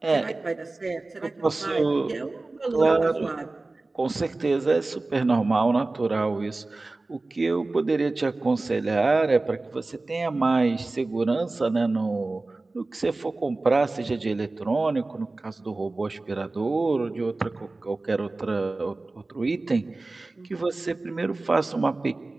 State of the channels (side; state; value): left; quieter; 3.2 dB